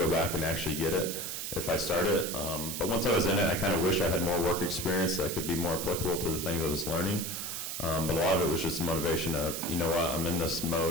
back and actually get it if I started. But once I was in it, I kind of wish I had more work experience that could be more applicable to the things I was learning. But a lot of it was just the motivation of, you know what, I'm in this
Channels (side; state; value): right; noise; hiss, 5 dB below the sound